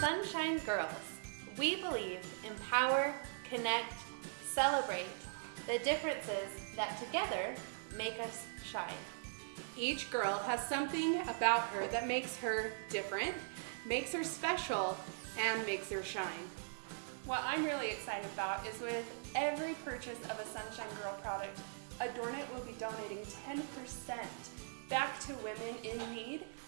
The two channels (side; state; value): left; silent; digital silence